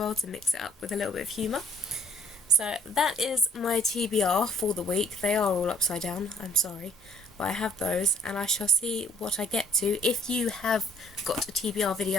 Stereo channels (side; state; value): both; normal; correlation 0.60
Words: to mix it up with a little bit of humour. So that is my TBR for the week. They are all upside down, I'm sorry, but I have those and I shall see what I get to. If you have got a TBR